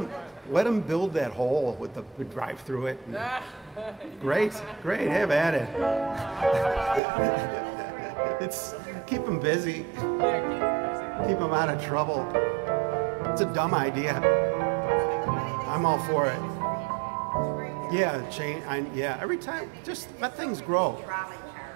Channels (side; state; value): left; drops out; at 7.0 s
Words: them build that hole with the drive through it. Great, have at it. It's keep them busy. Keep them out of trouble. It's a dumb idea. I'm all for it. Yeah, yeah, every time, just let things grow. Trolley